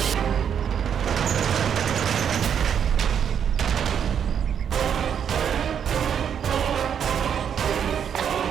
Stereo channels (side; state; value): left; quieter; 8.2 dB